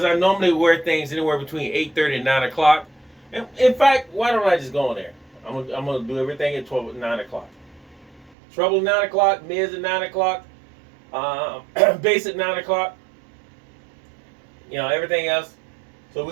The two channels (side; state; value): left; drops out; at 8.3 s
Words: I normally wear things anywhere between 8:30 and 9 o'clock. And in fact, why don't I just go on there? I'm gonna do everything at 9 o'clock. Treble 9 o'clock, mids at 9 o'clock, bass at 9 o'clock. You know, everything else. So we're